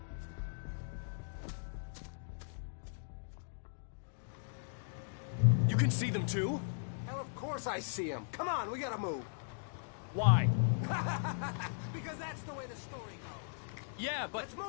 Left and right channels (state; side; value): silent; right; digital silence